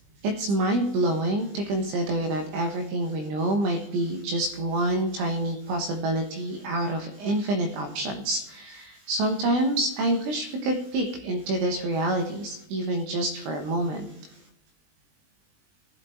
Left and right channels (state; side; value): late; left; 20 ms